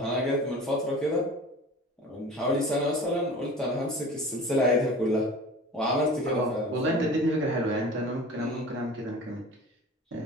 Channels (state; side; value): normal; both; correlation 0.40